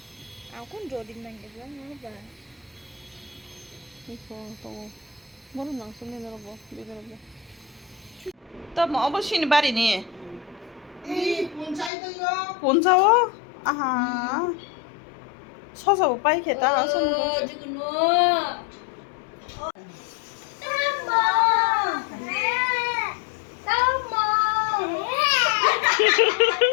aku jodi nang ke bilang mana ba 이거 또 뭐는 낭송이 내려봐 내려봐 또 뭐 어버신이 말이니 이 본사이도요 본사워 아하 서서 오빠 이렇게 따라 서는 거 지금 너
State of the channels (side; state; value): right; drops out; at 11.9 s